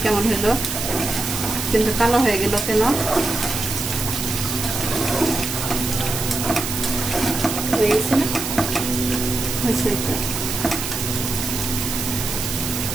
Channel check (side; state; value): right; noise; hiss, 4 dB below the sound